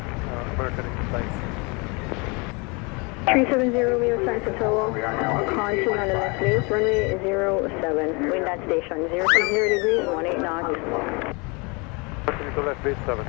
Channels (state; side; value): quieter; right; 29.7 dB